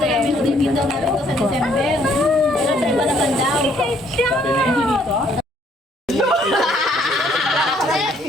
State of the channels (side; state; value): both; normal; correlation 0.65